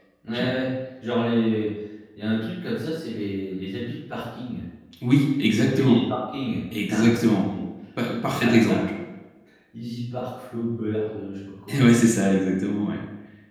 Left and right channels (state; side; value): identical; both; correlation 1.00